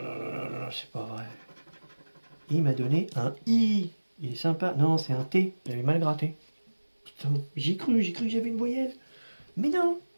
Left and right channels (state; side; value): inverted; both; correlation -1.00